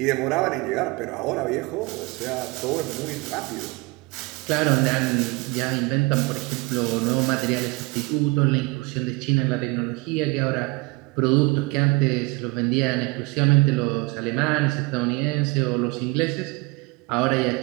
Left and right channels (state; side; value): quieter; left; 24.7 dB